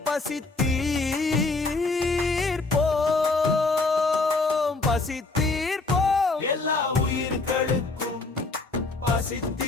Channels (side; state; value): right; quieter; 3.6 dB